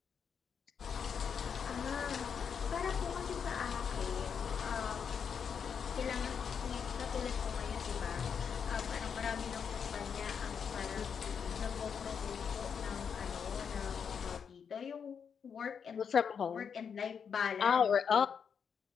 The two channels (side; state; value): right; quieter; 6.9 dB